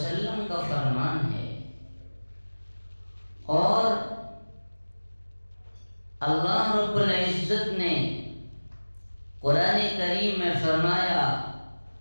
کا فرمان ہے۔ اور اللہ رب العزت نے قرآن کریم میں فرمایا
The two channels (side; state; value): both; inverted; correlation -1.00